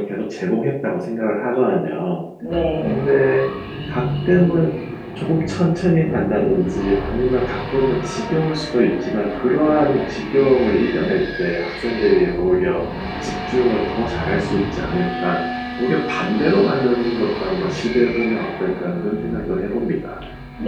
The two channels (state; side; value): identical; both; correlation 1.00